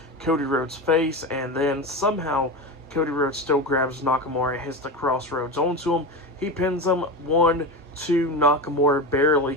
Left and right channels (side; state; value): both; normal; correlation 0.21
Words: Cody Rhodes' face, and then somehow Cody Rhodes still grabs Nakamura and hits the crossroads onto him. He pins him 1, 2, Nakamura barely